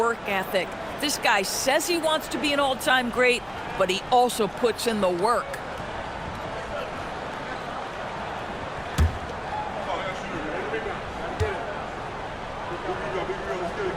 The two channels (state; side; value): identical; both; correlation 1.00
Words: ethic. This guy says he wants to be an all-time great, but he also puts in the work.